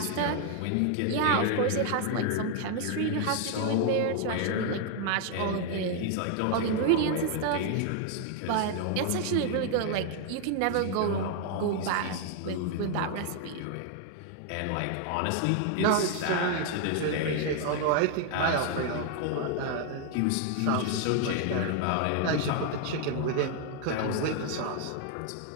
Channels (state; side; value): different; both; correlation 0.00